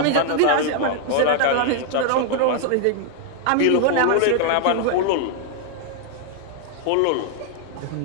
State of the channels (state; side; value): different; both; correlation 0.00